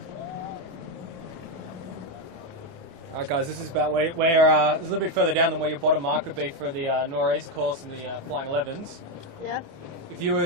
Alright guys, this is about where it's a little bit further down than where your bottom mark would be for the nor'east course and the Flying 11s. Yeah. If you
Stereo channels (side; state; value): left; late; 28 ms